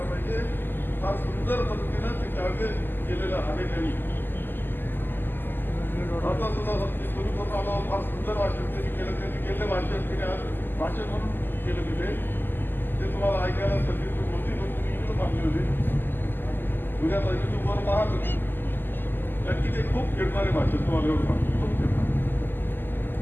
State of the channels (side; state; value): right; late; 0.094 ms